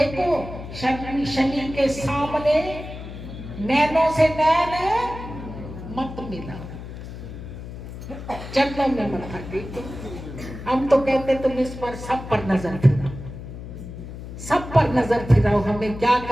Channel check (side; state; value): left; noise; hum, 11 dB below the sound